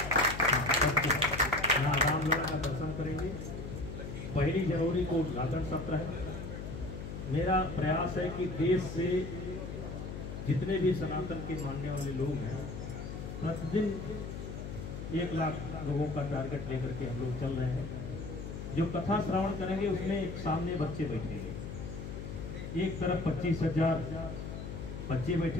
यहाँ रामलीला का दर्शन करेंगे। 1 जनवरी को उद्घाटन सत्र है। मेरा प्रयास है कि देश से जितने भी सनातन के मानने वाले लोग हैं, प्रतिदिन 1 लाख लोगों का टारगेट लेकर के हम लोग चल रहे हैं। जो कथा श्रवण करेंगे उसमें सामने बच्चे बैठेंगे। एक तरफ 25,000 बच्चे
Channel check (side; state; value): left; noise; hum, 7 dB below the sound